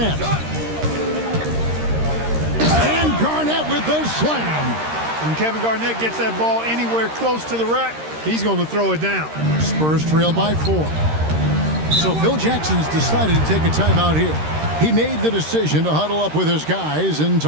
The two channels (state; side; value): late; left; 13 ms